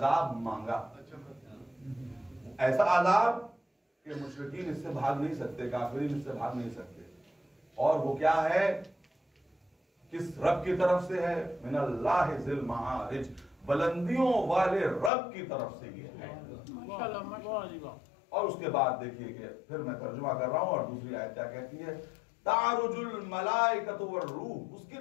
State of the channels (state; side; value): drops out; right; at 15.1 s